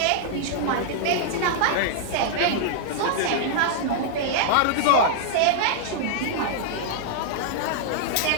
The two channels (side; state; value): both; different; correlation -0.01